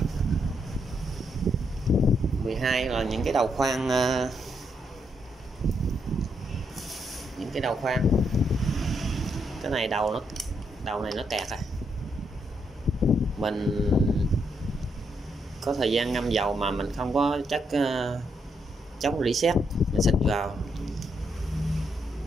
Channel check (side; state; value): both; normal; correlation 0.77